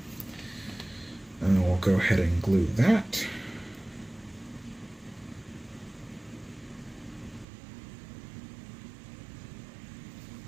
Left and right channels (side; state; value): left; drops out; at 7.5 s